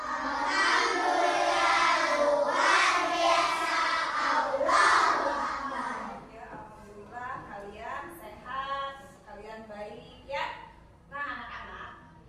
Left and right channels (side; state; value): both; identical; correlation 1.00